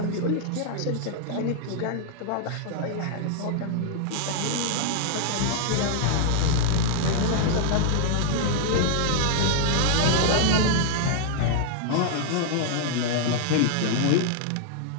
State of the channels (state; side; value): different; both; correlation -0.01